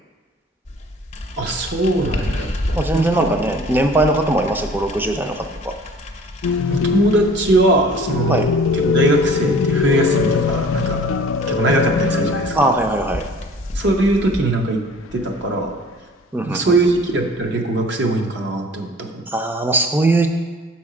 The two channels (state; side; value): normal; both; correlation 0.48